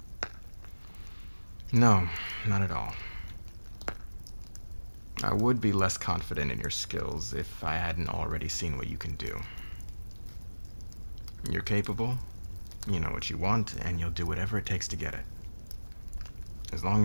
No, not at all. I would be less confident in your skills if I hadn't already seen what you can do. You're capable, you know what you want, and you'll do whatever it takes to get it. As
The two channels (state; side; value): inverted; both; correlation -1.00